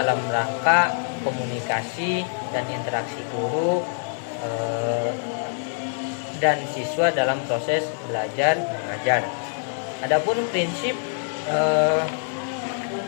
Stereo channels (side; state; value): right; silent; digital silence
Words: rangka komunikasi dan interaksi guru dan siswa dalam proses belajar mengajar. Adapun prinsip